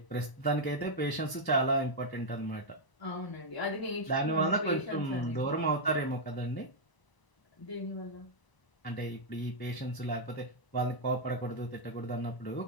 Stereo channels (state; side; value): late; right; 1.0 ms